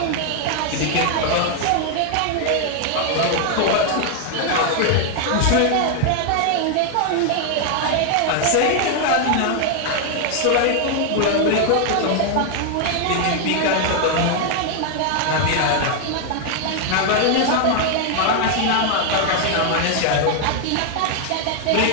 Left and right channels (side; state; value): both; different; correlation 0.00